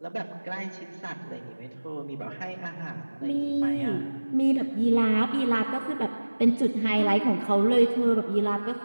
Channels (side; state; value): both; inverted; correlation -1.00